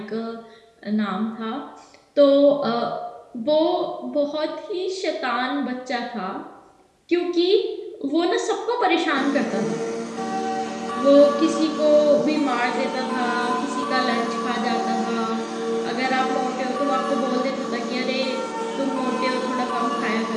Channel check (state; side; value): identical; both; correlation 1.00